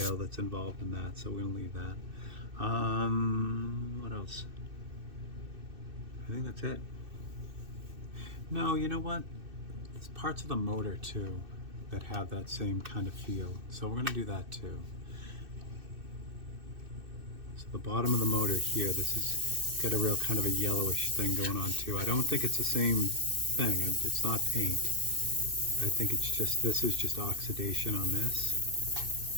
that's involved in that, so we're going to leave that. What else? I think that's it. No, you know what? There's parts of the motor too that have that same kind of feel. So we're going to do that too. So the bottom of the motor here, this has got a real kind of a yellowish thing going on too. I don't think it's the same thing. It's not paint. I think it's just, this is just oxidation on this.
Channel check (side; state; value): left; late; 2.6 ms